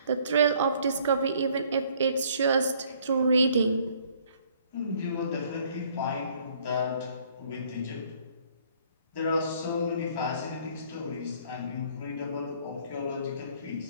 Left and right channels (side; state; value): both; inverted; correlation -0.61